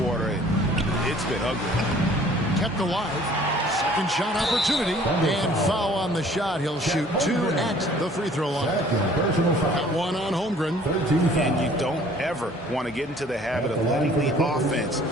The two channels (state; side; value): normal; both; correlation 0.54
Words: quarter. It's been ugly. Kept alive. Second shot opportunity. And foul on the shot. He'll shoot 2 at the free throw line. Got 1 on Holmgren. And you don't ever want to get into the habit of letting the offense